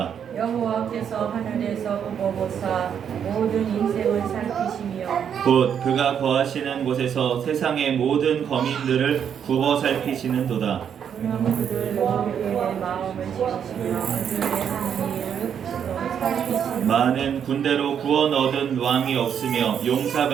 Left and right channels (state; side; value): quieter; left; 8.2 dB